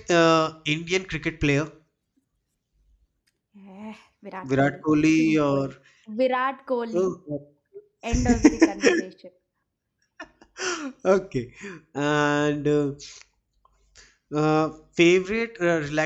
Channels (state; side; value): identical; both; correlation 1.00